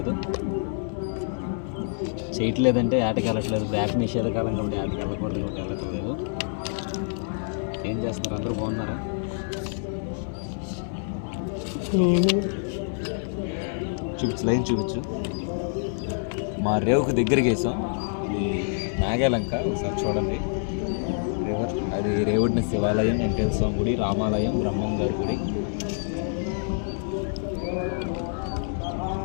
చేయట్లేదంటే ఆటకి వెళ్ళట్లేదు. బ్యాక్ నిషేధకాలం కాబట్టి ఆటకి వెళ్ళకూడదు కాబట్టి వెళ్ళట్లేదు. ఏం చేస్తున్నారు? అందరూ బాగున్నారా? చూపించు, లైన్ చూపించు. మా రేవుకు దగ్గరికి వేసాం. ఇది నాగేలంక, ఒకసారి చూడండి. రివర్ అది రేవుడిన శివాలయం, వెంకటేశ్వర స్వామి గుడి, రామాలయం, బ్రహ్మం గారి గుడి.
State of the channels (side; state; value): right; silent; digital silence